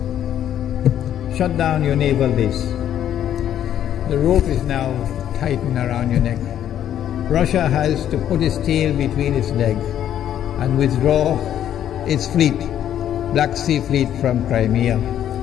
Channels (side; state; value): right; quieter; 10.6 dB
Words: Shut down your naval base. The rope is now tightened around your neck. Russia has to put its tail between its legs and withdraw its fleet, Black Sea Fleet, from Crimea.